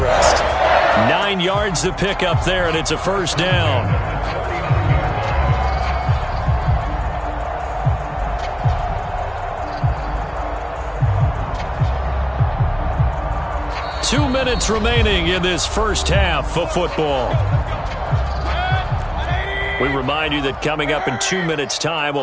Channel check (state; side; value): identical; both; correlation 1.00